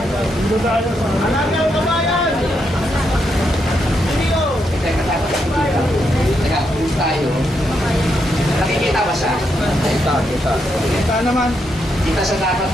ng kabayan! Video! Teka, teka, pulis tayo. Nakikita ba siya? Kita naman. Kita siya dapat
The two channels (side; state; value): both; normal; correlation 0.80